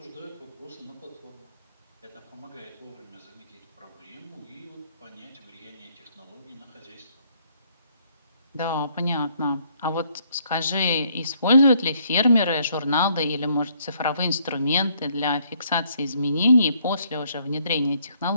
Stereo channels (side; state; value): both; inverted; correlation -0.67